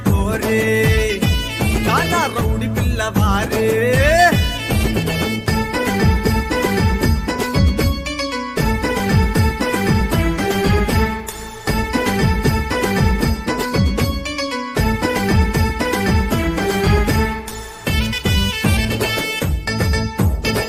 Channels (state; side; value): identical; both; correlation 1.00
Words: పోరే చానా రౌడి పిల్లవారే.